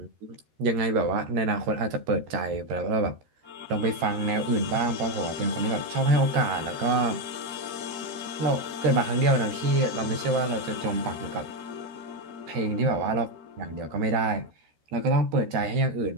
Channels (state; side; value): late; left; 13 ms